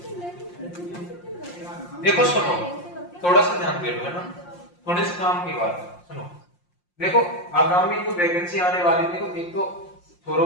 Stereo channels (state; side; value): late; right; 5.7 ms